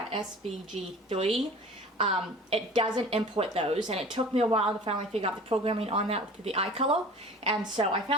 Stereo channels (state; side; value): normal; both; correlation 0.42